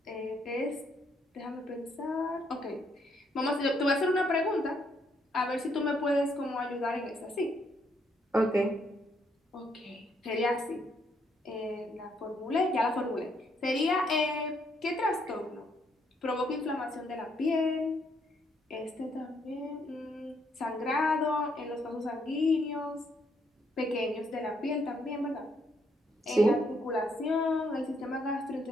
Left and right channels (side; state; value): both; normal; correlation 0.73